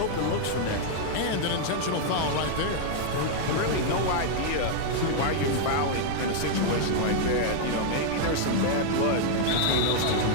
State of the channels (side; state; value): both; different; correlation -0.01